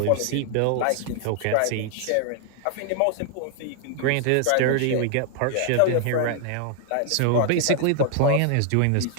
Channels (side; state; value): both; different; correlation 0.00